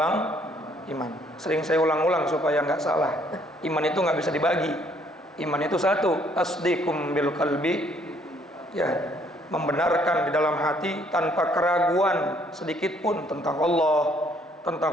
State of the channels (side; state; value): both; normal; correlation 0.65